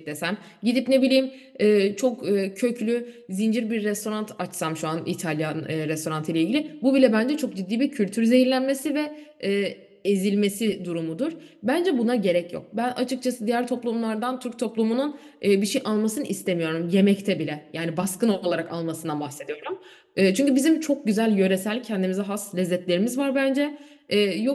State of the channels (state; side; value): identical; both; correlation 1.00